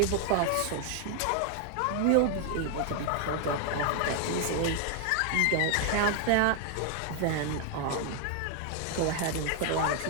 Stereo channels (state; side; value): different; both; correlation 0.00